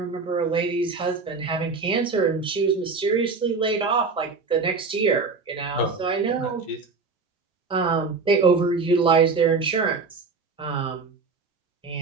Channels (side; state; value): left; quieter; 4.4 dB